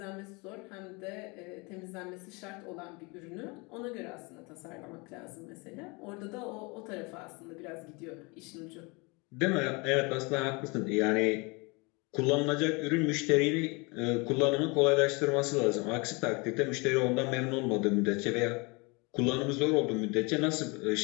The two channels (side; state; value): right; quieter; 28.3 dB